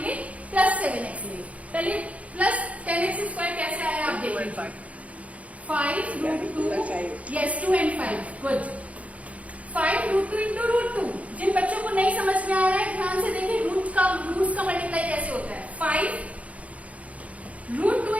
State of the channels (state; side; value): late; left; 0.066 ms